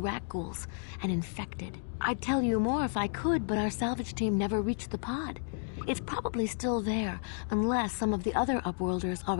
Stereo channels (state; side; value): silent; right; digital silence